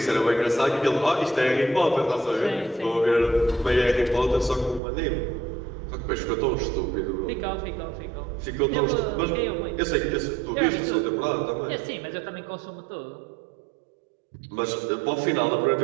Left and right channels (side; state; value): left; drops out; at 4.8 s